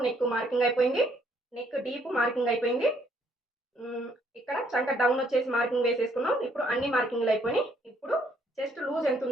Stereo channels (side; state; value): both; normal; correlation 0.68